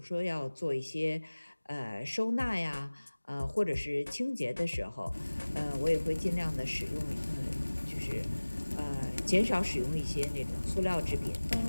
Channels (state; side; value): inverted; both; correlation -1.00